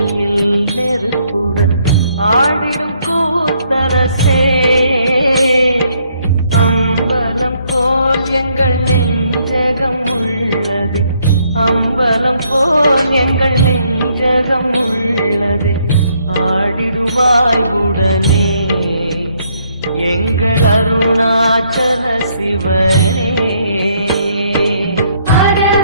நெருப்புடன் ஆடிடும் கூத்தரசே அம்பலம் போல் எங்கள் நெஞ்சகம் உள்ளது அம்பலம் போல் எங்கள் நெஞ்சகம் உள்ளது ஆடிடுவாய் உடனே எங்கள் அருணாச்சல சிவனே ஹர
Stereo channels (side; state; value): both; inverted; correlation -0.70